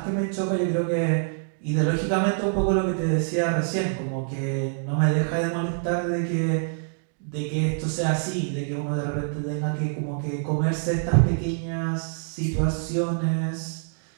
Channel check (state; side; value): silent; left; digital silence